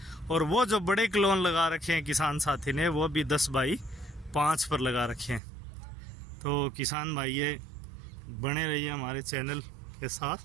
और वो जो बड़े क्लोन लगा रखे हैं किसान साथी ने वो भी 10 बाई 5 पर लगा रखे हैं। तो किसान भाई ये बने रहिए हमारे चैनल के साथ,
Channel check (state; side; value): drops out; left; at 5.4 s